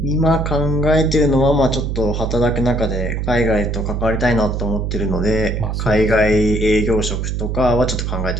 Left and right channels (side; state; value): right; noise; hum, 2 dB below the sound